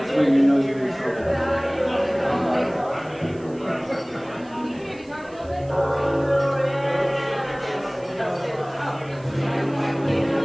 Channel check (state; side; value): noise; right; hiss, 28 dB below the sound